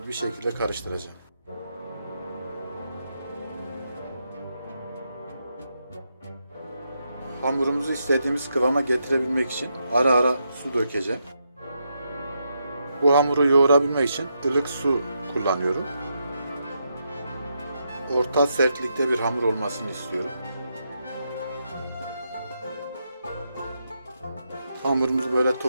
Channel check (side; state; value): both; inverted; correlation -0.81